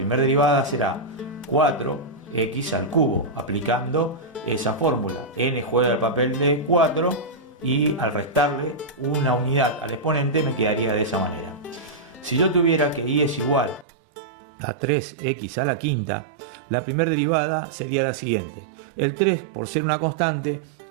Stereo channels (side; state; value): left; drops out; at 13.9 s